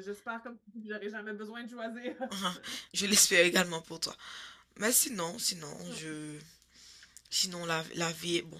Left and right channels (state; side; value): identical; both; correlation 1.00